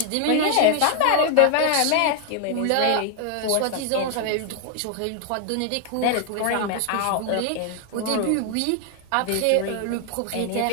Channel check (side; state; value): both; different; correlation 0.00